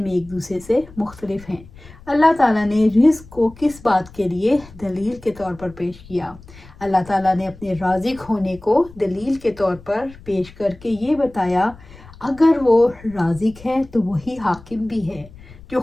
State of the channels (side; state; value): left; noise; rumble, 21 dB below the sound